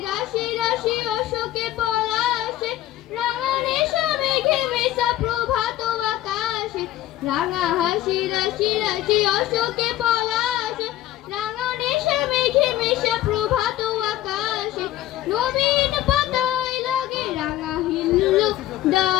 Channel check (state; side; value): quieter; right; 14.1 dB